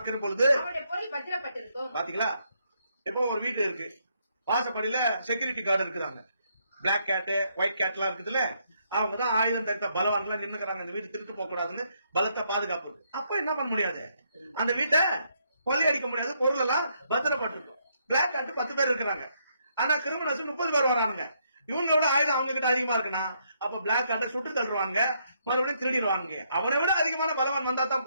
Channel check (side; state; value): both; inverted; correlation -0.74